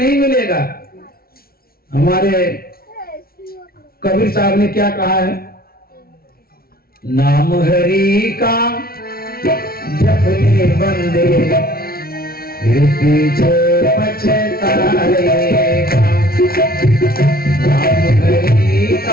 मिलेगा। हमारे कबीर साहब ने क्या कहा है? नाम हरि का जपने बंदे फिर पीछे पछताएगा। नाम हरि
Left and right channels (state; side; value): late; right; 0.44 ms